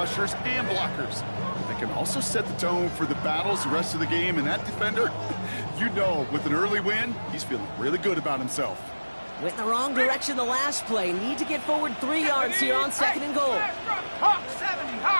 and blockers. They can also set the tone for the battles the rest of the game, and that defender, you know, with an early win, he's feeling really good about himself. Went in the wrong direction the last play. Need to get forward 3 yards here on second and goal. Hawk 70,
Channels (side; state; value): both; inverted; correlation -1.00